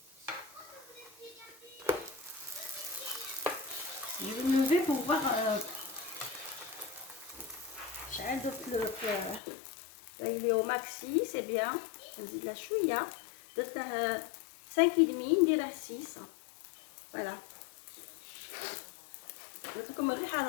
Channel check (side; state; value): right; drops out; at 9.4 s